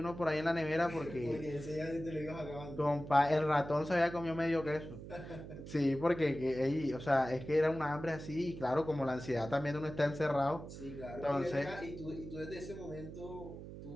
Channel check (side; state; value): right; noise; hum, 12 dB below the sound